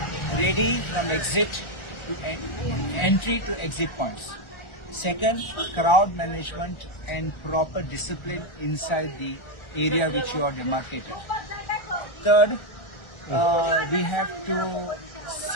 Ready from exit to entry to exit points. Second, crowd management and proper discipline inside the area which you are demarcated. Third, we have to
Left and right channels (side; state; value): right; late; 1.4 ms